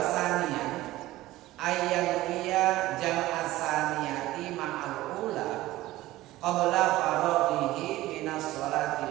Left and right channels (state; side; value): quieter; left; 16.8 dB